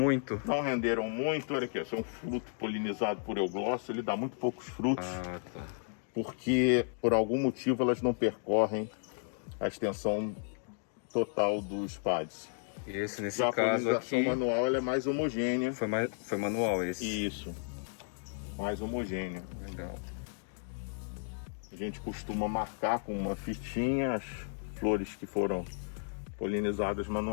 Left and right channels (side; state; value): right; silent; digital silence